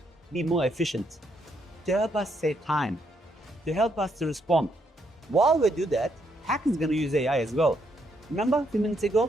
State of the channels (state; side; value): normal; both; correlation 0.75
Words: be more efficient, to help us save time, to help us to respond. While we do that, hackers are going to use AI as well. Remember a few minutes ago,